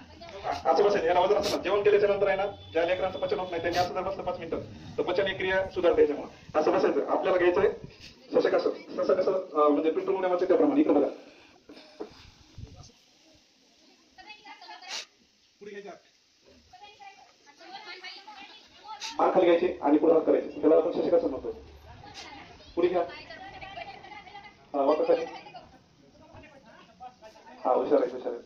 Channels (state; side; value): identical; both; correlation 1.00